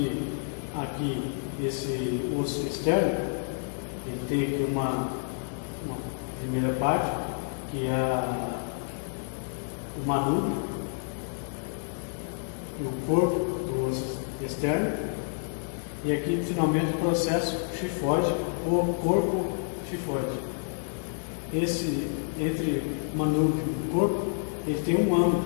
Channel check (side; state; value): right; silent; digital silence